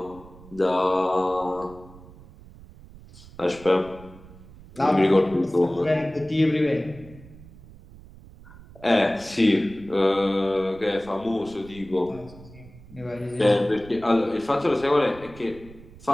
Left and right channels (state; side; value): noise; right; rumble, 20 dB below the sound